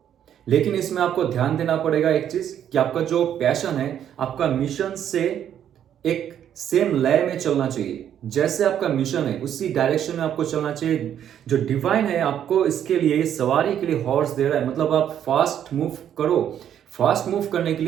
लेकिन इसमें आपको ध्यान देना पड़ेगा एक चीज कि आपका जो पैशन है, आपका मिशन से एक सेम लय में चलना चाहिए। जैसे आपका मिशन है उसी डायरेक्शन में आपको चलना चाहिए। जो डिवाइन है आपको इसके लिए सवारी के लिए हॉर्स दे रहा है, मतलब आप फास्ट मूव करो। फास्ट मूव करने के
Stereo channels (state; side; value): quieter; left; 9.8 dB